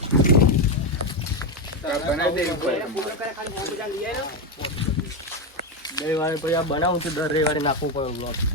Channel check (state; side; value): normal; both; correlation 0.10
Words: બનાવું છું દર રવિવારે નાખવું પડે બ્લોગ.